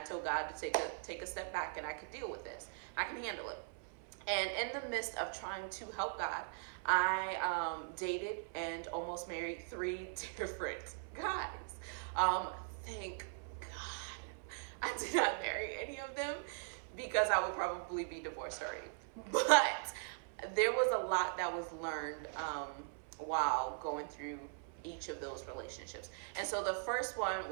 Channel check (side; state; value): left; silent; 51 dB below the other